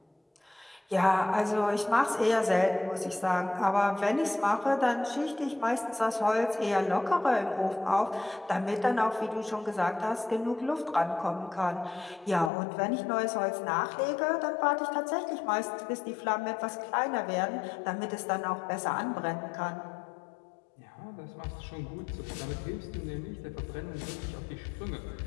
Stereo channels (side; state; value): right; drops out; at 12.5 s